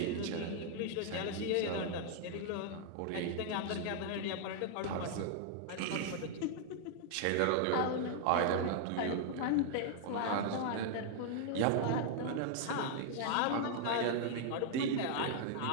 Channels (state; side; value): different; both; correlation 0.00